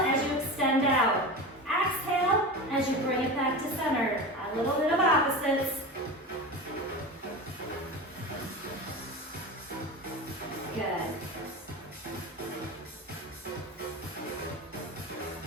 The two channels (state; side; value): normal; both; correlation 0.28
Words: you extend out. Exhale as you bring it back to center. A little bit of opposites. Good.